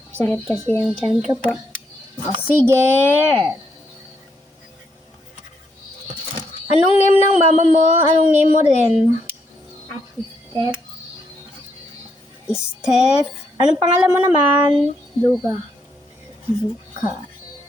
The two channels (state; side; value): normal; both; correlation 0.76